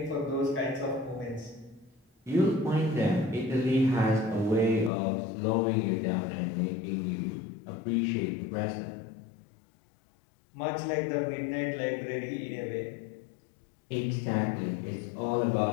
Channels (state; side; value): drops out; right; at 4.9 s